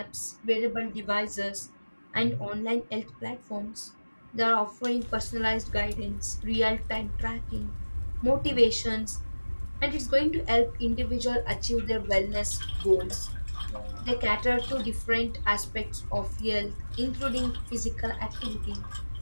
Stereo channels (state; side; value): inverted; both; correlation -1.00